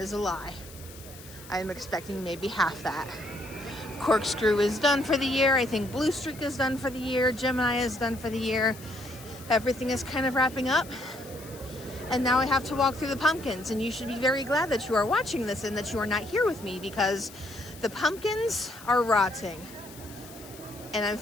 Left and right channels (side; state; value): left; noise; hiss, 18 dB below the sound